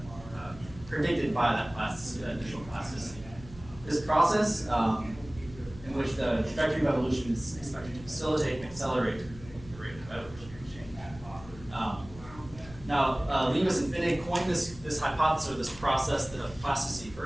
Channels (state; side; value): noise; left; hum, 17 dB below the sound